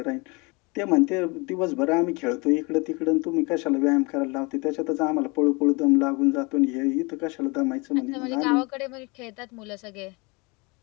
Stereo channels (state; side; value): quieter; right; 27.9 dB